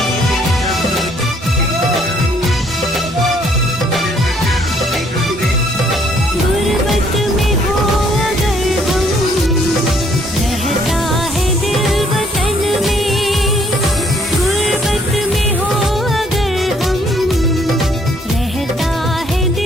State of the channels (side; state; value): both; normal; correlation 0.64